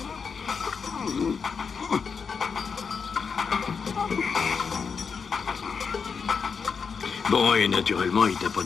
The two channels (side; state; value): right; quieter; 5.8 dB